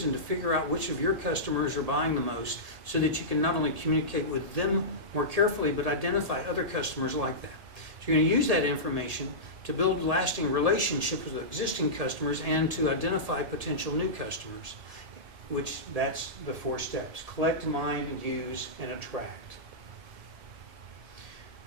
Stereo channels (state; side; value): late; left; 1.7 ms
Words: and to figure out which of your customers are buying the most, so that you can not only communicate with them more carefully, but identify other customers like that. So you're going to use that information to build lasting relationships with existing customers and to identify potential new customers, which that's the 4 steps: collect, mine, use, and attract.